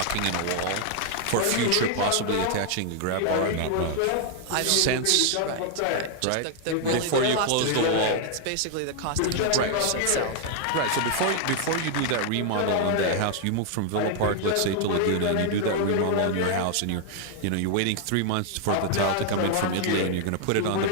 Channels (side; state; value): both; different; correlation 0.00